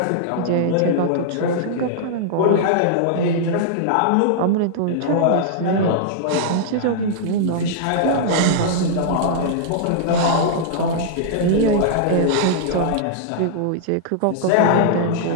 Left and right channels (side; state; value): both; different; correlation -0.02